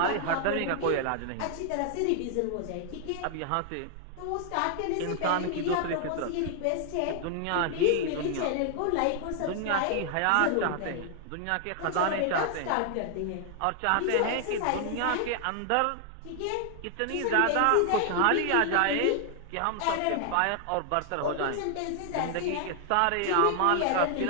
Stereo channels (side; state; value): both; different; correlation 0.00